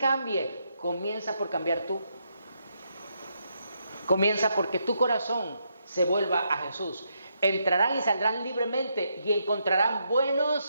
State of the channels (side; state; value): both; inverted; correlation -0.79